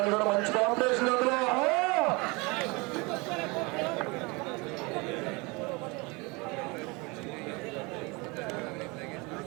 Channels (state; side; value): quieter; left; 27.1 dB